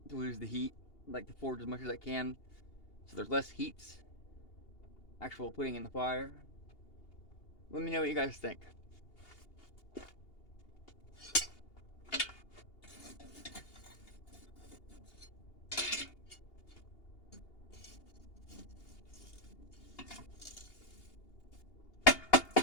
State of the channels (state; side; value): late; right; 2.8 ms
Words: to lose the heat. I like to forge as much as I can so there's less heats actual putting in the fire. Let me know what you guys think.